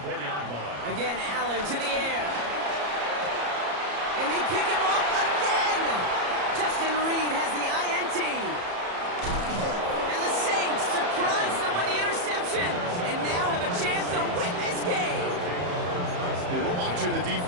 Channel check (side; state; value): left; late; 34 ms